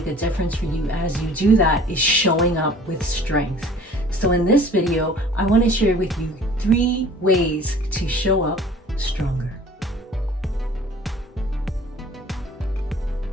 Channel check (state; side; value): normal; both; correlation 0.48